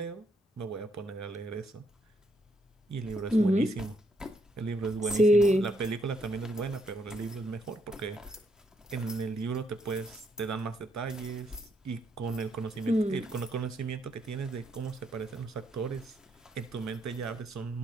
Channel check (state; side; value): normal; both; correlation 0.74